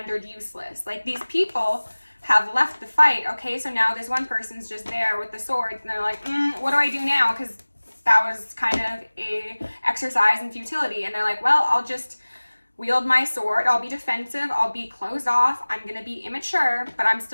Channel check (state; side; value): inverted; both; correlation -1.00